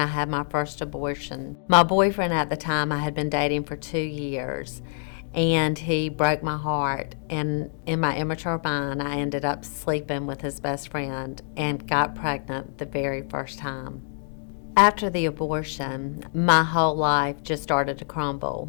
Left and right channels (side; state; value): right; silent; digital silence